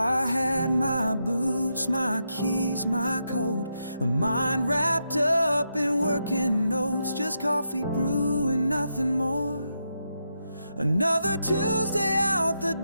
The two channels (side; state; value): both; inverted; correlation -0.84